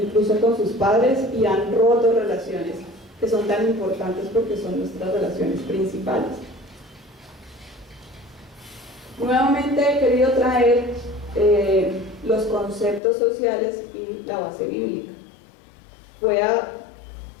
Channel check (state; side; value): drops out; right; at 13.0 s